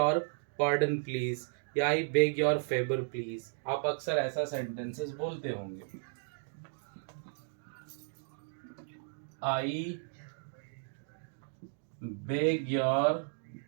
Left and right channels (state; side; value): silent; left; digital silence